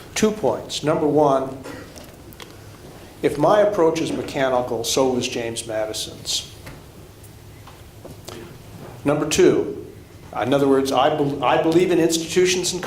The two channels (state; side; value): identical; both; correlation 1.00